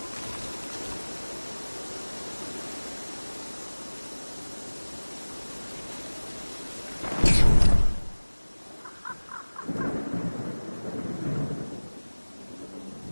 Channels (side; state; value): both; inverted; correlation -1.00